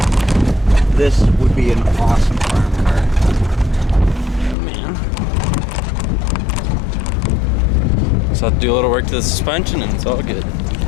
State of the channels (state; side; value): drops out; right; at 4.5 s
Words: This would be an awesome farm car. Man. So I'll do a little work to the suspension and it's all good.